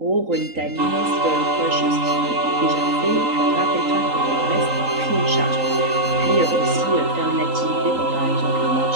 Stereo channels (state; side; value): late; left; 3.8 ms